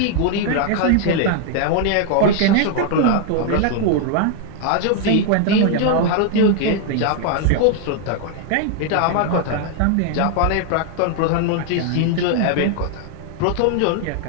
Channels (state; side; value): different; both; correlation 0.00